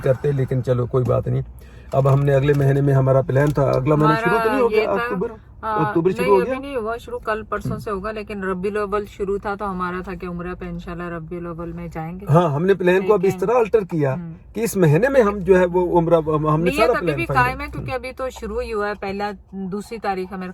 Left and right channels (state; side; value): identical; both; correlation 1.00